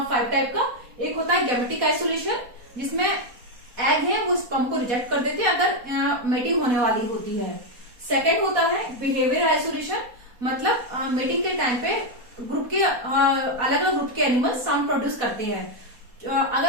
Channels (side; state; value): left; late; 4.2 ms